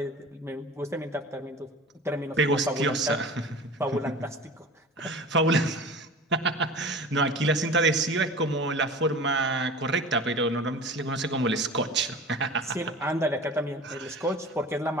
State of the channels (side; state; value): both; normal; correlation 0.37